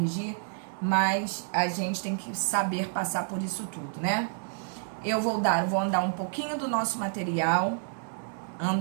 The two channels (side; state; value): left; silent; digital silence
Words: mas a gente tem que saber passar por isso tudo, né? Eu vou andar um pouquinho do nosso material,